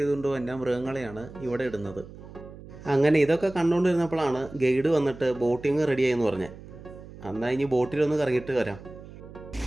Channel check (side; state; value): right; noise; hum, 16 dB below the sound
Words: വന്ന മൃഗങ്ങളെയാണ് ഇവിടെ ഇടുന്നത്. അങ്ങനെ ഇതൊക്കെ കണ്ടുകൊണ്ടിരുന്നപ്പോഴാണ് ഗൈഡ് വന്നിട്ട് ബോട്ടിങ് റെഡിയായെന്ന് പറഞ്ഞത്. എന്നാൽ ഇനി ബോട്ടിലൊന്ന് കറങ്ങിയിട്ട് വരാം.